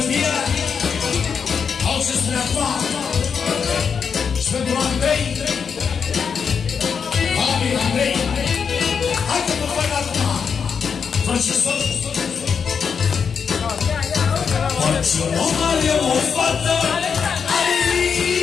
au să spune acum. Și pentru Andrei, Babi Andrei, hai că mă fac acum. Francesor, orice om are o fată, are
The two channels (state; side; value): quieter; right; 6.4 dB